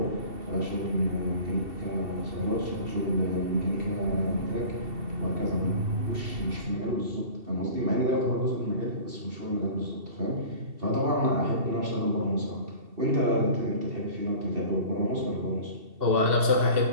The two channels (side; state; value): left; late; 2.7 ms